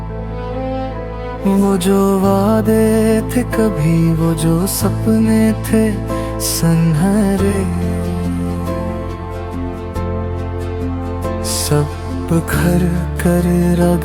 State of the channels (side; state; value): both; identical; correlation 1.00